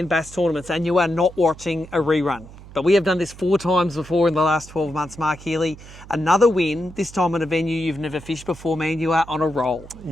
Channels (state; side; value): noise; right; hum, 18 dB below the sound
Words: Bass Tournaments, and you are not watching a rerun. But we have done this 4 times before in the last 12 months, Mark Healey. Another win, this time at a venue you've never fished before, man. You are on a roll.